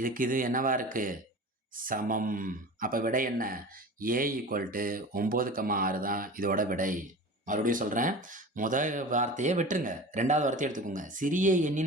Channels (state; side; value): normal; both; correlation 0.35